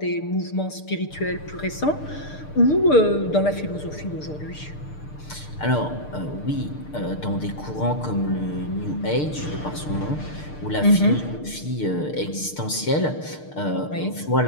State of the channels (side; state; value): right; late; 6.7 ms